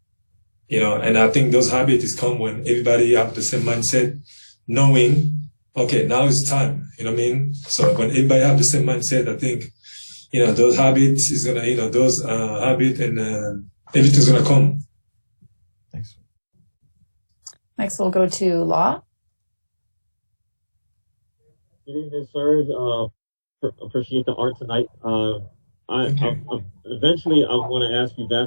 And I think those habits come when everybody have the same mindset, knowing, okay, now is time. You know what I mean? So when everybody have the same mindset, I think, those habits is gonna, those habits and everything's gonna come. Thanks. Next, we'll go to Law. Good evening, Serge. Appreciate the art tonight. Eventually, I want to ask you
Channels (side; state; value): both; inverted; correlation -1.00